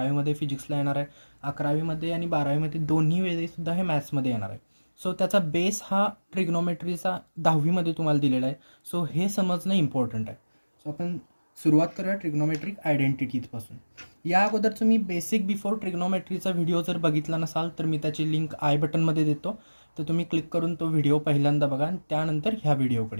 फिजिक्सला येणार आहे, 11वीमध्ये आणि 12वीमध्ये दोन्ही वेळेसुद्धा हे मॅथ्समध्ये येणार आहे. सो त्याचा बेस हा ट्रिग्नोमेट्रीचा 10वीमध्ये तुम्हाला दिलेला आहे. सो हे समजणं इम्पॉर्टंट आहे. सो आपण सुरुवात करूया ट्रिग्नोमेट्रिक आयडेंटिटीजपासून. या अगोदरचं मी बेसिक बिफोर ट्रिग्नोमेट्रीचा व्हिडिओ जर बघितला नसाल तर मी त्याची लिंक आय बटनमध्ये देतो, तर तुम्ही क्लिक करून तो व्हिडिओ पहिल्यांदा बघा आणि त्यानंतर ह्या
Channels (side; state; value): both; inverted; correlation -1.00